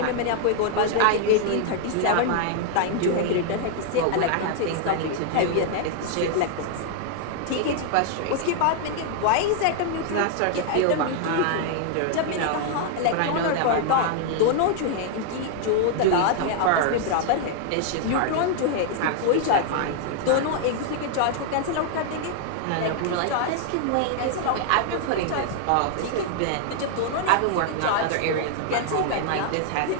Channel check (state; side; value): different; both; correlation 0.00